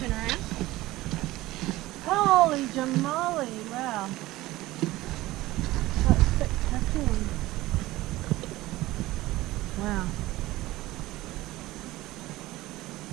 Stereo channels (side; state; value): left; quieter; 17.7 dB